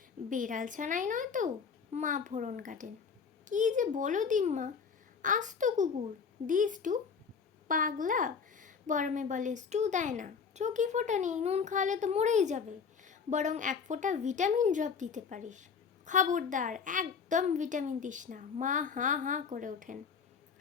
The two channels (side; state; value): right; quieter; 6.0 dB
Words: বেড়াল ছানাই নয় তো, মা ফোড়ন কাটেন। কি যে বলো দিম্মা, আস্ত কুকুর, দি স্টু। পাগলা, বরমে বলে স্টু দেয় না, চোখই ফোটা নেই, নুন খাওয়ালে তো মরেই যাবে, বরং এক ফোঁটা ভিটামিন ড্রপ দিতে পারিস। খবরদার, একদম ভিটামিন দিস না। মা হাঁ হাঁ করে ওঠেন।